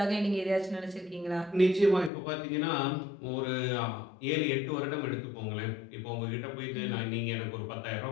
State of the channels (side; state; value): right; drops out; at 2.1 s